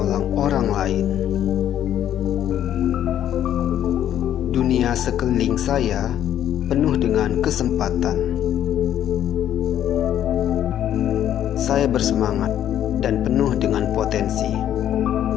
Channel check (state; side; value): quieter; right; 10.8 dB